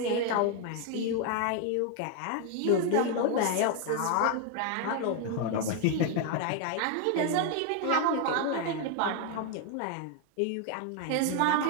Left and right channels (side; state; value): both; different; correlation 0.00